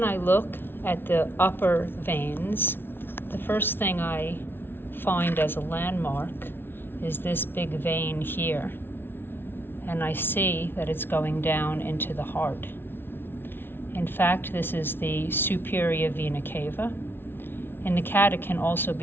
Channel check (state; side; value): late; right; 0.11 ms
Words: I look at the upper veins, the first thing I find as a landmark is this big vein here, and I see that it's going down into the heart. In fact, this is the superior vena cava. In the cat, it can also